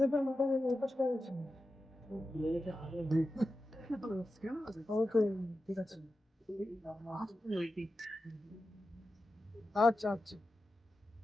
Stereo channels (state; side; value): normal; both; correlation 0.92